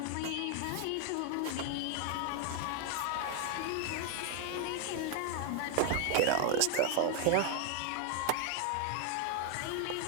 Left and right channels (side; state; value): both; different; correlation 0.00